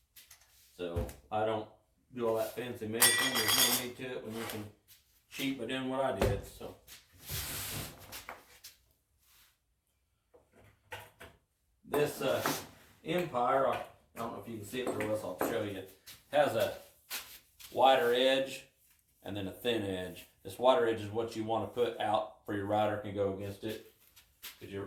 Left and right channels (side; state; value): both; identical; correlation 1.00